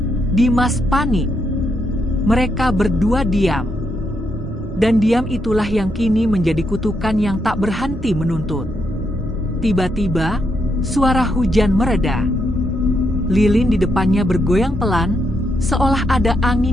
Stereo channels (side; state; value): both; normal; correlation 0.79